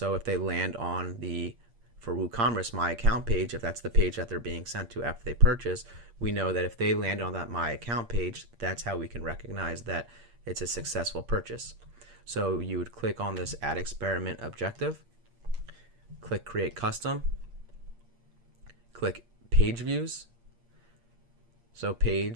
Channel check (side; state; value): left; late; 8.6 ms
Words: if they land on for WooCommerce My Account page, if that's the page that they're being sent to after they purchase, we know that if they land on that My Account page, that's how we can recognize that it's a successful purchase. So you would click on this Add Experiment Objective, click Create Custom, click Page Views. So